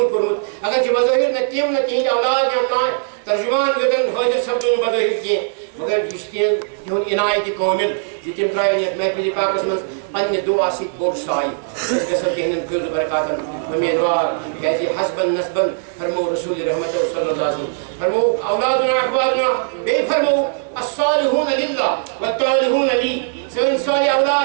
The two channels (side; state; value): left; silent; digital silence